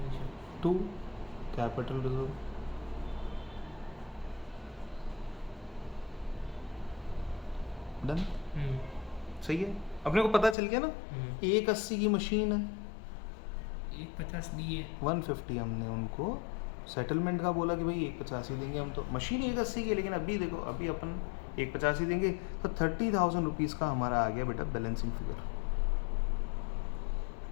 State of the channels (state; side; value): drops out; right; at 10.6 s